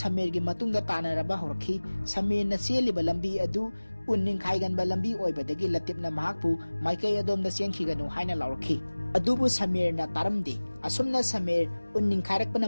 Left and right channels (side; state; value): both; inverted; correlation -1.00